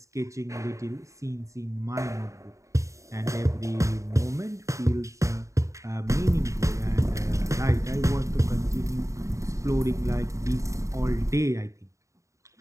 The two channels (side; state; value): left; late; 0.15 ms